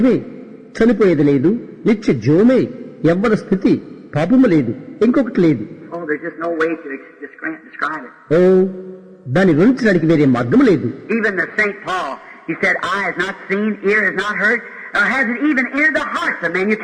చనిపోయేది లేదు, నిత్య జీవమే, యవ్వన స్థితి, పాపము లేదు, ఇంకొకటి లేదు. Oh, there's just no way to describe it. ఓ, దాన్ని వివరించడానికి వేరే మార్గం లేదు. Even the Saint Paul, he said, eye has not seen, ear has not heard, or hasn't even entered the hearts of men. You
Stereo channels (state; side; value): identical; both; correlation 1.00